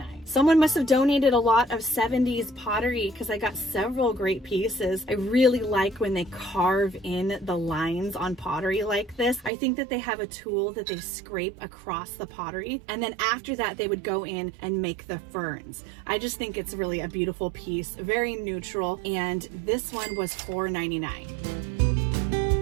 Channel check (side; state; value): left; drops out; at 9.5 s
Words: Someone must have donated a lot of 70s pottery because I got several great pieces. I really like when they carve in the lines on pottery like this. I think that they have a tool that they scrape across the pottery, and then after that they would go in and make the ferns. I just think it's really a beautiful piece, very neutral, and this one was $4.99.